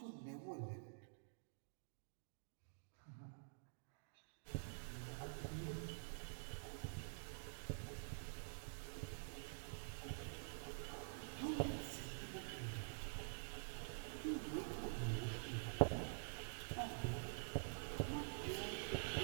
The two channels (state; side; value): silent; left; digital silence